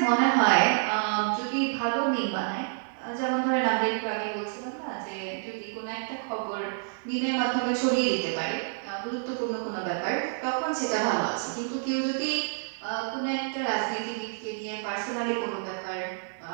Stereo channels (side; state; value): left; silent; digital silence